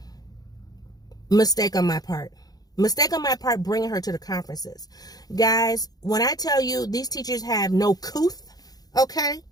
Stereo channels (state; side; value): late; right; 0.19 ms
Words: Mistake on my part bringing her to the conferences. Guys, when I tell you these teachers have no couth, okay,